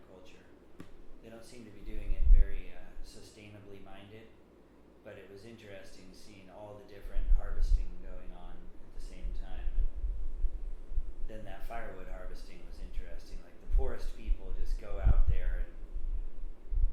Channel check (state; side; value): identical; both; correlation 1.00